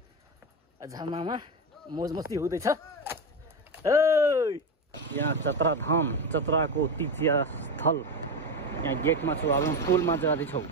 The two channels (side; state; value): both; normal; correlation 0.15